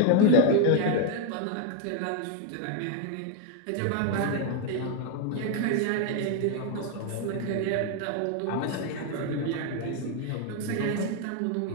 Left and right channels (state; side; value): different; both; correlation 0.01